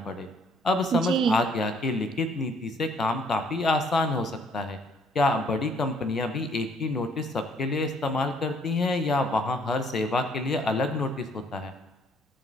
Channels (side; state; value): both; normal; correlation 0.64